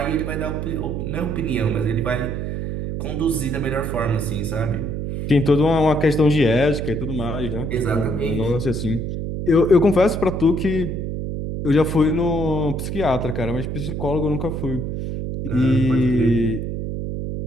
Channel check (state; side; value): noise; right; hum, 4 dB below the sound